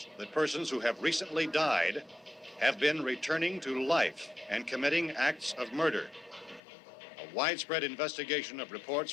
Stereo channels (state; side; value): drops out; right; at 6.6 s